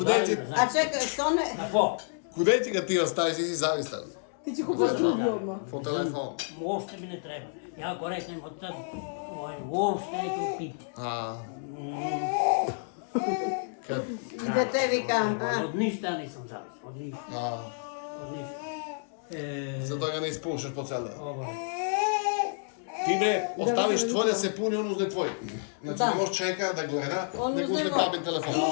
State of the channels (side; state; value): right; silent; digital silence